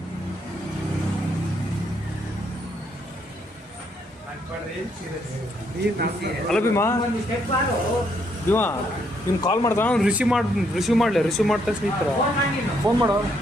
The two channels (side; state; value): both; normal; correlation 0.73